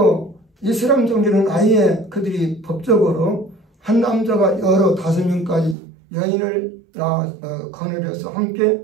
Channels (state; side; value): drops out; left; at 5.8 s